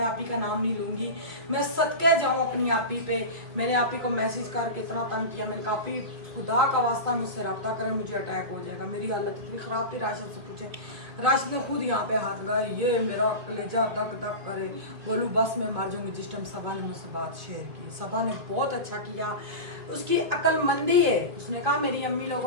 आपी का नाम नहीं लूँगी, मैं सदके जाऊँ अपनी आपी पे। मैंने आपी को मैसेज करके इतना तंग किया, मैंने कहा आपी खुदा का वास्ता मुझसे रब्ता करें, मुझे अटैक हो जाएगा। मेरी हालत इतनी ख़राब थी, राशिद से पूछे, राशिद ने खुद यहाँ पे हाथ लगाया, ये मेरा कलेजा धक धक करे, बोलूँ बस मैं मर जाऊँगी। जिस टाइम सबा ने मुझसे बात शेयर की, सबा ने बहुत अच्छा किया, उसकी अक्लमंदी है। उसने कहा मेरी अम्मी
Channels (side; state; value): left; late; 2.5 ms